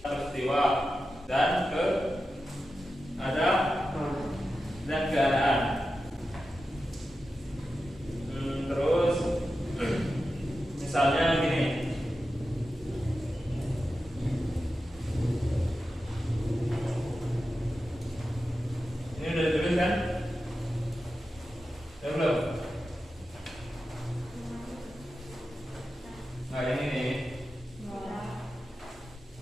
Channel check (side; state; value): both; normal; correlation 0.91